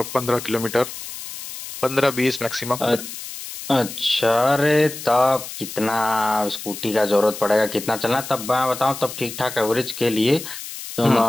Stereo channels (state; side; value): noise; left; hiss, 10 dB below the sound